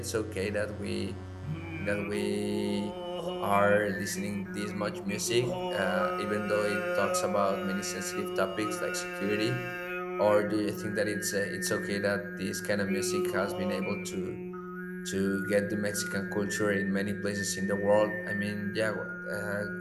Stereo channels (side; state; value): both; identical; correlation 1.00